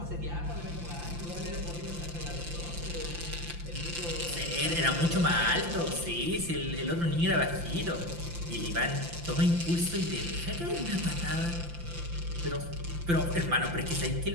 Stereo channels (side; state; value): left; late; 5.8 ms